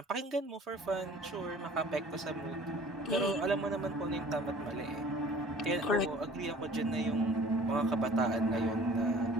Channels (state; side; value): normal; both; correlation 0.49